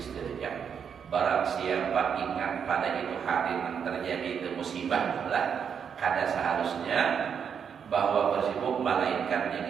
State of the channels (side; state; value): left; quieter; 7.3 dB